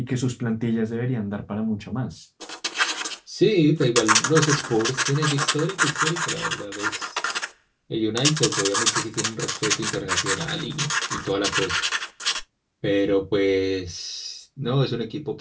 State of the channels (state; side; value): identical; both; correlation 1.00